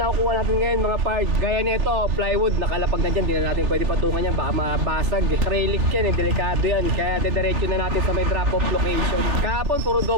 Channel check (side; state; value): left; late; 3.5 ms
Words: nakukuha natin ngayon mga parts. Gaya nito, plywood, nakalapag na dyan. Di na natin pwede patungan yan, baka mabasag. Acrylic yan, delikado yan. Kaya didiretso na natin sa may drop-off location. Kahapon, puro